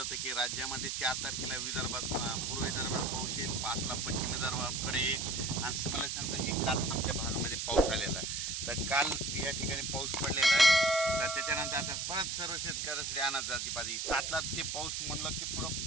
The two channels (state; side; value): noise; right; hiss, 2 dB below the sound